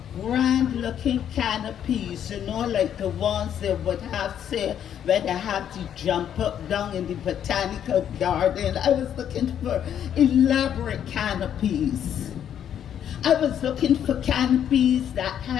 grand looking canopies, you know, like the ones they would have, say, where they have to jump up down in the botanical garden. I was looking for elaborate canopies. I was looking for canopies that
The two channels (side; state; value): right; quieter; 9.5 dB